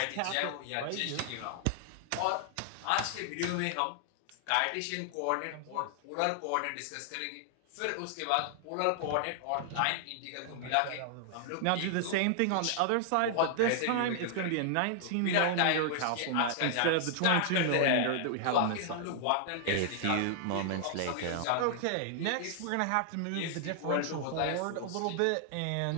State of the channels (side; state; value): both; different; correlation -0.01